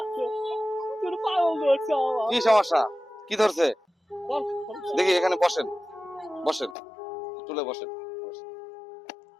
কি সমস্যা, কি ধরছে? দেখি, এখানে বসেন, বসেন, চুলে বসেন।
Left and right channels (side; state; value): right; drops out; at 6.8 s